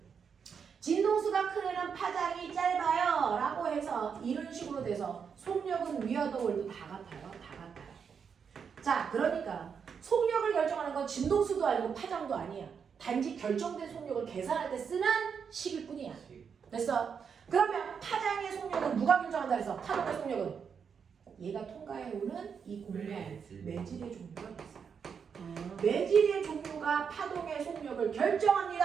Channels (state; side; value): quieter; left; 6.6 dB